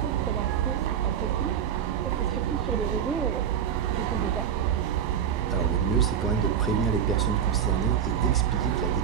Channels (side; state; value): left; quieter; 8.5 dB